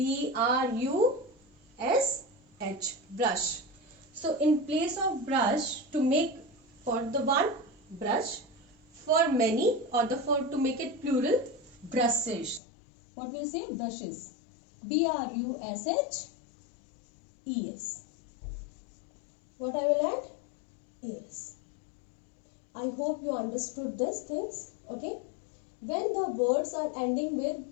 brush. So in place of brush, to make for the one brush, for many, or to make it plural, brushes. What will say? Brushes. BRUSHES. What I will add? Es. I hope you understood these things. Okay. When the words are ending with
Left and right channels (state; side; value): drops out; right; at 12.6 s